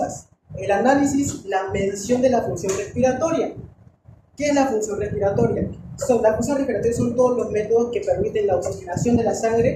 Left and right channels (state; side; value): identical; both; correlation 1.00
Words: el análisis, la medición de la función respiratoria. ¿Qué es la función respiratoria? La función respiratoria son todos los métodos que permiten la oxigenación de la